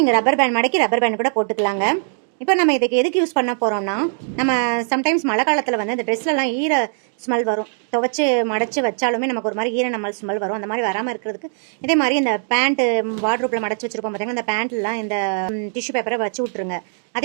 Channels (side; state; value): left; silent; digital silence